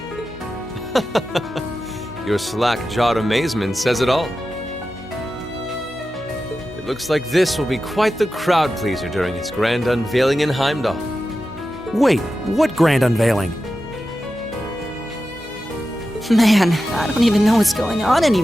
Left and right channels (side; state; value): left; noise; hum, 21 dB below the sound